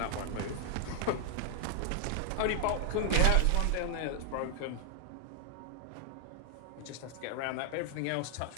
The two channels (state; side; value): different; both; correlation 0.00